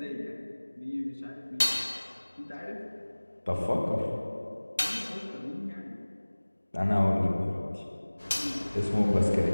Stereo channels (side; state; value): both; inverted; correlation -1.00